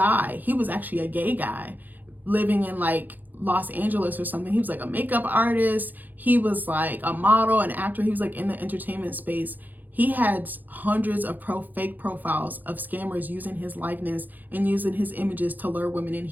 he was actually a gay guy living in like Los Angeles or something. He was like a makeup artist. He was like a model, an actor. He was like in the entertainment space. He had hundreds of fake profiles of scammers using his likeness and using his images to lure women in.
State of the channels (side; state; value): left; late; 0.085 ms